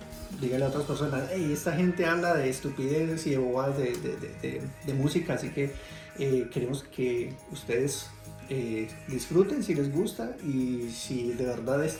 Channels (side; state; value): both; identical; correlation 1.00